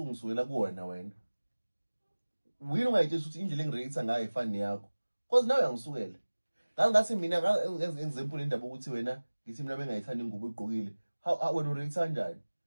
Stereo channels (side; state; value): both; inverted; correlation -1.00